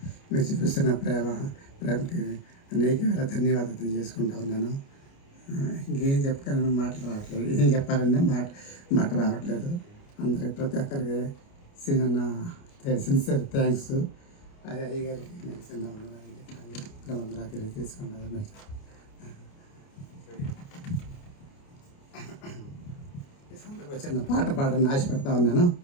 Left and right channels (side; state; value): right; late; 29 ms